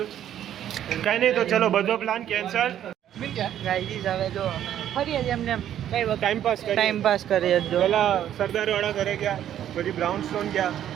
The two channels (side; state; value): left; quieter; 10.8 dB